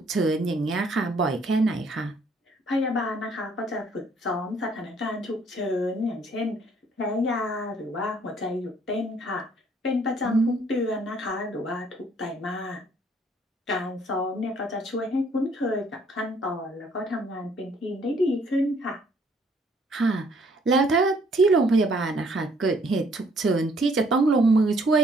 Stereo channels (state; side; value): normal; both; correlation 0.63